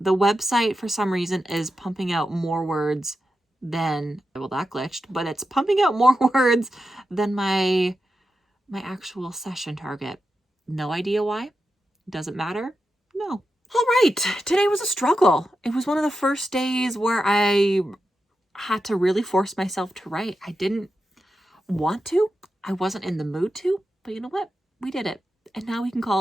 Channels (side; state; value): both; normal; correlation 0.89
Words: The website for some reason is pumping out more words than, well, that glitched, but it's pumping out more words than my actual session target. No idea why. Doesn't matter. No. All right. Today was a struggle. It was one of the first days where I had to really force myself to write. I didn't want to. I wasn't in the mood to, but you know what? We did it. And now we can